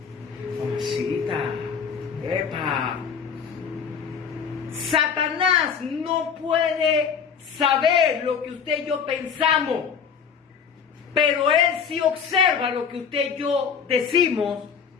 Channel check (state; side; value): quieter; right; 6.7 dB